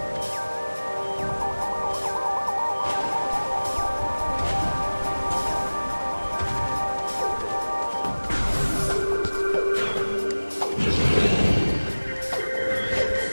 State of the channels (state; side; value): inverted; both; correlation -1.00